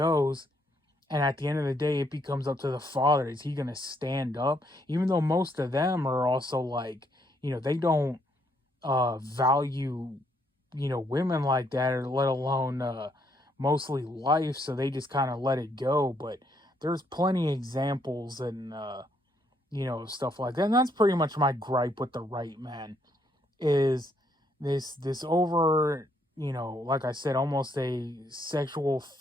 And at the end of the day, it becomes up to the father. Is he going to stand up? Even though most of them are also like, they don't value, women like that, or let alone mostly life. So they just kind of let it go. But there's plenty of examples and, stuff like that. And that's pretty much my gripe with the right, man, is this over, like I said, almost a sexual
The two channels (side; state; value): both; normal; correlation 0.72